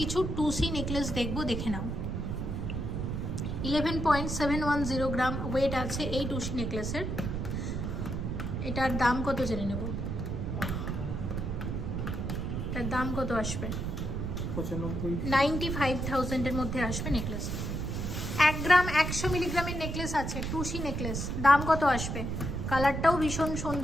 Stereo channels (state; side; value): noise; right; rumble, 3 dB below the sound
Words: কিছু 2C নেকলেস দেখবো, দেখে নাও। 11.710 গ্রাম ওয়েট আছে এই 2C নেকলেসের। এটার দাম কত জেনে নেব। এটার দাম কত আসবে? 95,000 এর মধ্যে আসবে নেকলেস। 1 গ্রাম 100 মিলিগ্রামের নেকলেস আছে 2C নেকলেস, দাম কত আসবে? কালারটাও ভীষণ